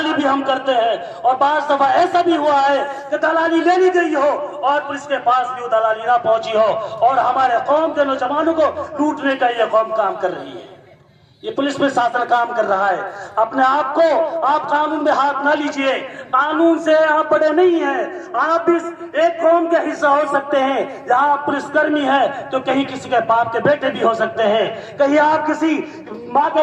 بھی ہم کرتے ہیں۔ اور بعض دفعہ ایسا بھی ہوا ہے کہ دلالی لے لی گئی ہو اور پولیس کے پاس بھی وہ دلالی نہ پہنچی ہو، اور ہمارے قوم کے نوجوانوں کو لوٹنے کا یہ قوم کام کر رہی ہے، یہ پولیس پرشاسن کام کر رہا ہے۔ اپنے آپ کو آپ قانون میں ہاتھ نہ لیجئے، قانون سے آپ بڑے نہیں ہیں، آپ اس ایک قوم کے حصہ ہو سکتے ہیں۔ جہاں آپ پولیس کرمی ہے تو کہیں کسی کے باپ کے بیٹے بھی ہو سکتے ہیں، کہیں آپ کسی ماں کے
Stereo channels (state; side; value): identical; both; correlation 1.00